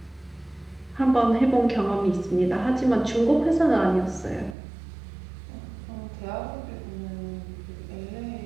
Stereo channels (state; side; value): drops out; left; at 4.5 s